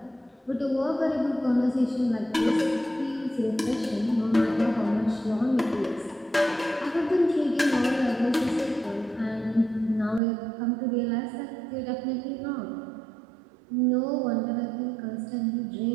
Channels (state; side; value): drops out; left; at 10.2 s